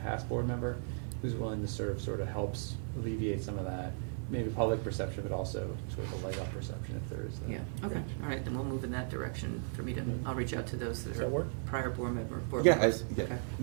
board member who's willing to serve sort of helps alleviate some of that, maybe public perception, but also sort of a leg up perception if there is that. Yeah, okay, all right, then we'll move in that direction for me to, I'll reach out to those Does that that work? are prior board Yeah, members. yeah, Okay.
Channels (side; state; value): left; silent; 54 dB below the other